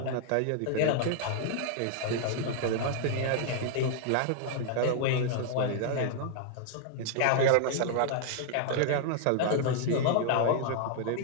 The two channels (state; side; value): different; both; correlation -0.01